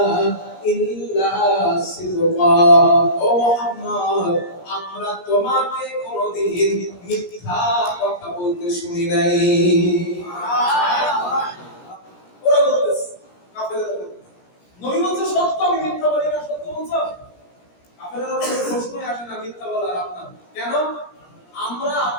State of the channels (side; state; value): right; late; 17 ms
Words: ইল্লা সিদকা, ও মুহাম্মদ আমরা তোমাকে কোনদিন মিথ্যা কথা বলতে শুনি নাই। ওরা বলতেছে, কাফেররা বলতেছে, নবী বলছে সত্য, আমি মিথ্যা বলি না, সত্য বলছো? কাফেররা বলছে প্রশ্নই আসে না মিথ্যা বলার আপনার, কেন? আমরা